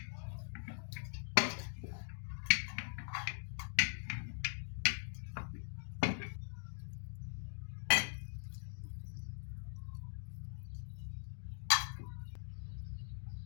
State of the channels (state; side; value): silent; right; digital silence